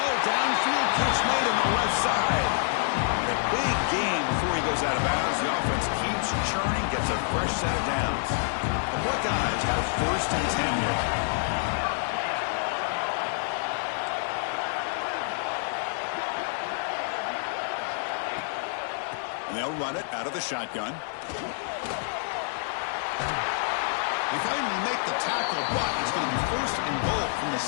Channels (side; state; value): right; silent; digital silence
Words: downfield catch made on the left side. And a big gain before he goes out of bounds. The offense keeps churning, gets a fresh set of downs. The Buckeyes have first and 10 here. And they'll run it out of the shotgun. They finally make the tackle, but it's going to be first and goal from the